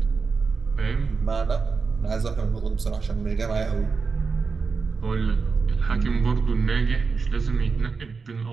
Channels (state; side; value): quieter; left; 4.8 dB